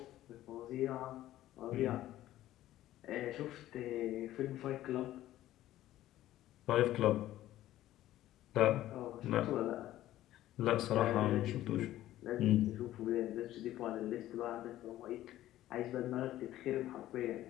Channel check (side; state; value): right; quieter; 14.1 dB